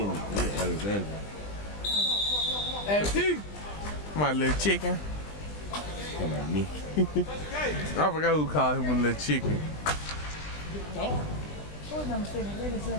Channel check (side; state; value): right; late; 20 ms